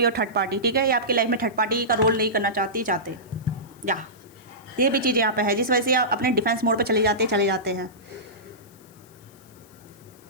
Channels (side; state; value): left; noise; hiss, 27 dB below the sound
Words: third party, ठीक है, ये आपकी लाइफ में थर्ड पार्टी का रोल नहीं करना चाहते या ये भी चीज़ यहाँ पे है, जिस वजह से आप अपने डिफेंस मोड पे चले जाते हैं।